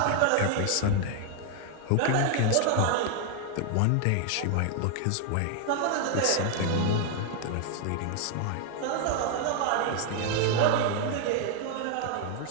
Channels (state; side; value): different; both; correlation 0.00